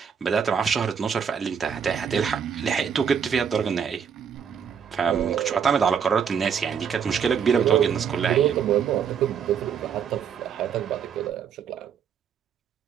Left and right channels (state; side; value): quieter; left; 7.4 dB